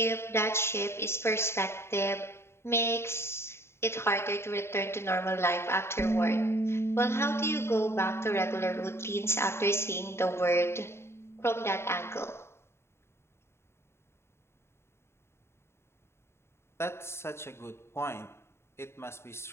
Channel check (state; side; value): late; right; 0.12 ms